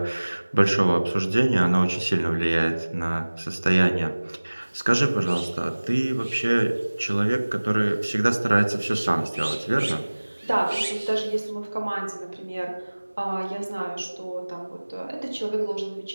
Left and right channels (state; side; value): inverted; both; correlation -1.00